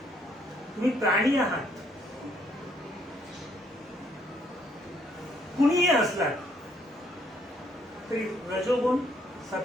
तुम्ही प्राणी आहात, कुणीही असलात तरी रजोगुण,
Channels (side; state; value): both; normal; correlation 0.68